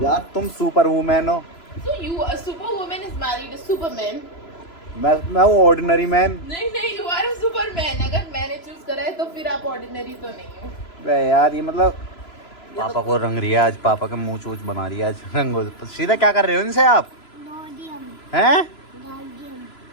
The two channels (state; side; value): late; right; 3.0 ms